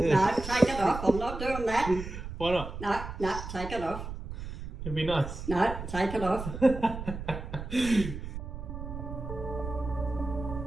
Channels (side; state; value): right; noise; rumble, 8 dB below the sound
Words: it off. I'm not doing that. Why not? No, take it off. It'd be nice. No, take it off.